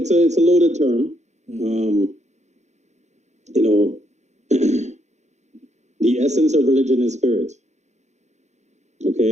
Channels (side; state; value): left; late; 0.33 ms